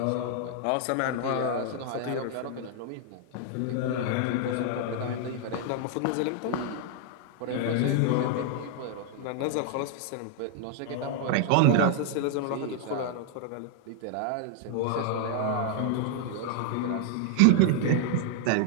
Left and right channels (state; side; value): different; both; correlation 0.00